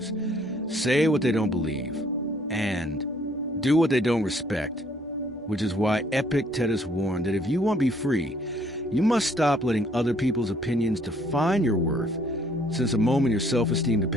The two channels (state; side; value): normal; both; correlation 0.63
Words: say what they don't believe, and do what they don't respect, which is why Epictetus warned that if you want to be free, you must stop letting other people's opinions define your worth, since the moment your self-esteem